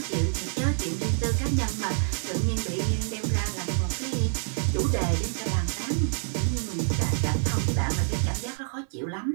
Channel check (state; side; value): silent; left; 60 dB below the other